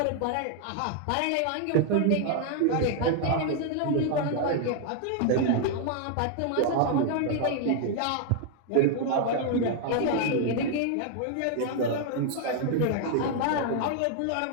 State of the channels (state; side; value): different; both; correlation 0.00